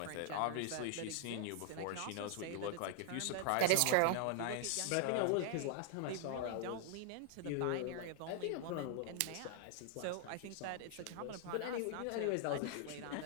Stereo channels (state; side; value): different; both; correlation 0.00